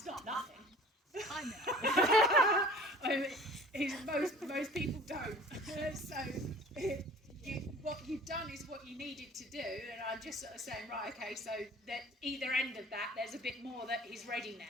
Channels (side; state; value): both; normal; correlation 0.46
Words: not nothing. I know. I mean, most people don't. So what you've done is what you needed to do, and I'm just sort of saying, right, okay, so that either end of that, there's a bit more that is ready